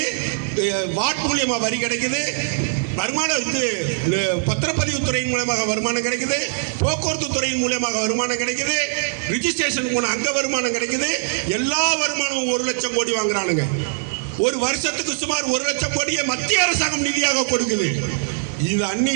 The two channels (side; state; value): left; silent; 65 dB below the other